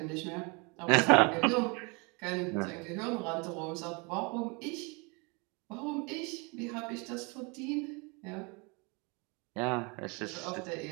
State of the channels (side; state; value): left; quieter; 30.4 dB